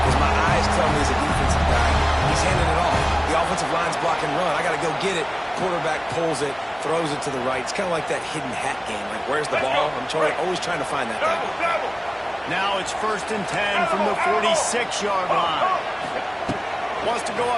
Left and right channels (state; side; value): identical; both; correlation 1.00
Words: because my eyes tell me he's a defensive guy. He's handing it off. The offensive line's block and run. I got to go get it. Quarterback pulls it, throws it to the right. It's kind of like that hidden hat game. Like, where's the ball? I'm always trying to find that guy. Now it's 1st and 10 from the 46-yard line. Wants to go